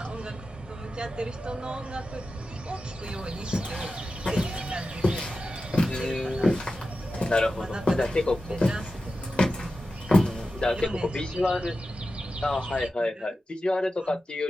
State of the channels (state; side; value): normal; both; correlation 0.92